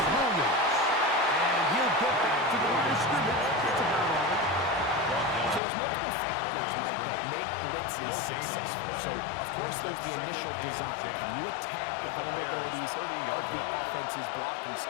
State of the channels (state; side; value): drops out; right; at 5.6 s